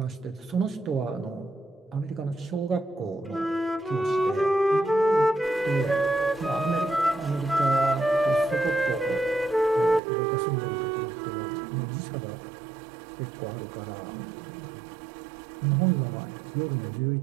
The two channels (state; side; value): drops out; left; at 10.0 s